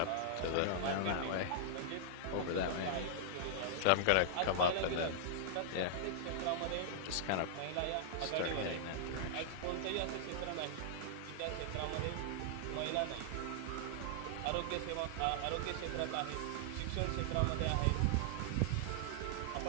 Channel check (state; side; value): different; both; correlation -0.01